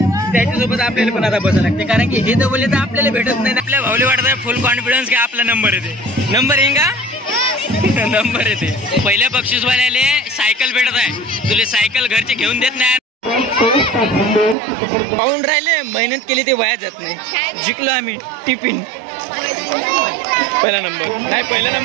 त्याच्यासोबत आपल्याला पण आता बसायला लागते, कारण की हे तर बोलले तर आपल्याला भेटत नाही. आपल्या भावले वाटत फुल कॉन्फिडन्स की आपला नंबर येते. नंबर येईन का? नंबर येते. पहिल्या बक्षीसवाल्याले सायकल भेटत आहे. तुले सायकल घरचे घेऊन देत नाही. पाहून राहिले मेहनत केली ते वाया जात नाही. जिंकलो आम्ही टिफिन. पहिला नंबर नाही, पहिला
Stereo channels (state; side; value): drops out; left; at 14.6 s